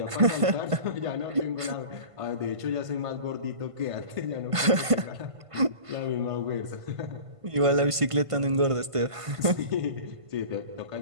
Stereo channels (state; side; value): late; left; 1.5 ms